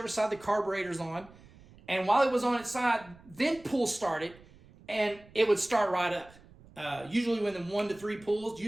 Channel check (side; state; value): right; noise; rumble, 24 dB below the sound